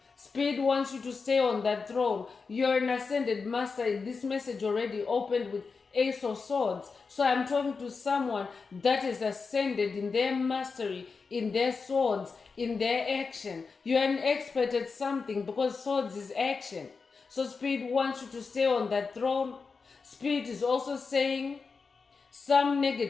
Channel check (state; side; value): quieter; right; 4.8 dB